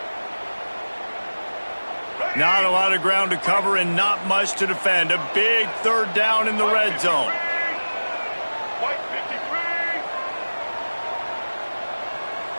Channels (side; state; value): both; inverted; correlation -1.00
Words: Not a lot of ground to cover and not much to defend. A big 3rd down in the red zone.